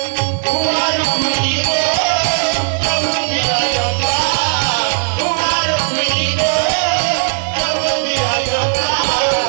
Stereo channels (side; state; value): left; silent; digital silence